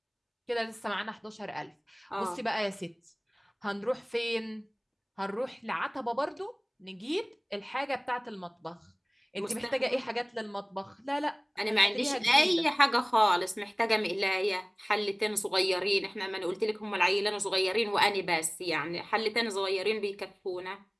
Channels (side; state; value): both; identical; correlation 1.00